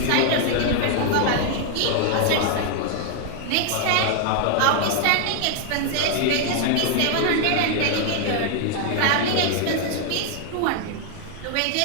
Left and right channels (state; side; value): different; both; correlation 0.00